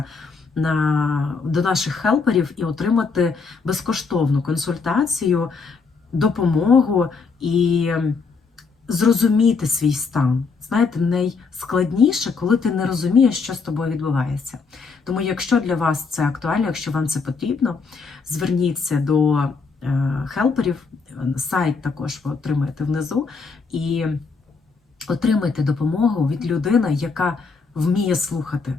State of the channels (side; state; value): right; quieter; 4.8 dB